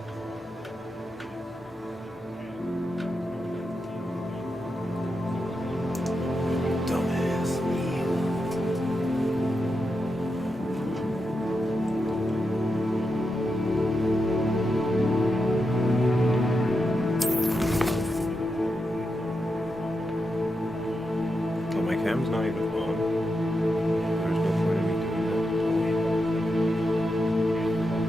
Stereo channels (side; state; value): both; normal; correlation 0.86